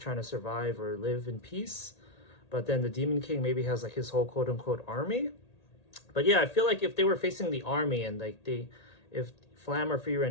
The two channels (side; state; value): right; late; 1.8 ms